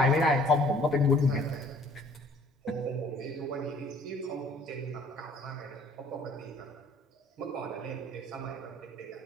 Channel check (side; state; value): both; normal; correlation 0.55